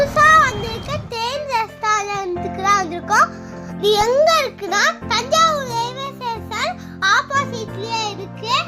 வந்திருக்க தேன் ரெஸ்டாரண்ட்டுக்கு தான் வந்திருக்கோம். இது எங்க இருக்குன்னா தஞ்சாவூர் ரயில்வே ஸ்டேஷன் ஆப்போசிட்லயே இருக்கு.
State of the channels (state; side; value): identical; both; correlation 1.00